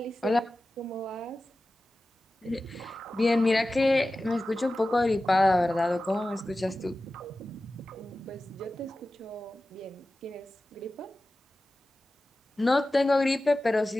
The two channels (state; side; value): normal; both; correlation 0.95